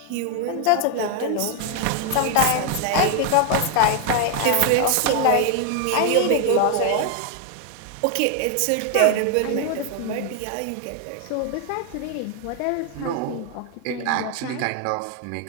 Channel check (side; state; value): both; different; correlation 0.01